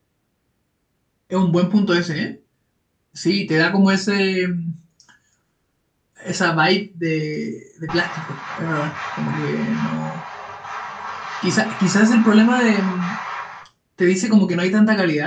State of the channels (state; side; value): identical; both; correlation 1.00